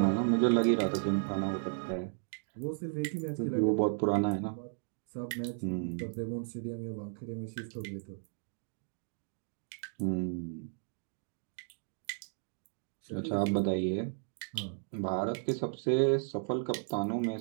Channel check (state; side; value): silent; left; 55 dB below the other